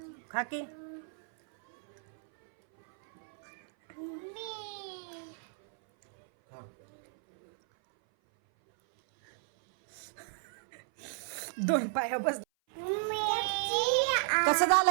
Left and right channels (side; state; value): left; silent; 56 dB below the other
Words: खा की. दोन पाया बस. कसं